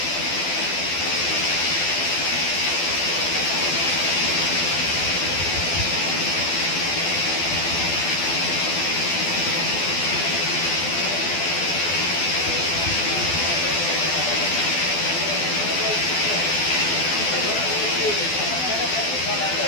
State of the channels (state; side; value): late; right; 12 ms